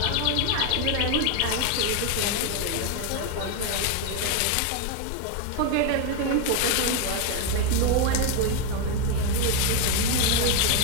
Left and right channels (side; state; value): both; different; correlation 0.02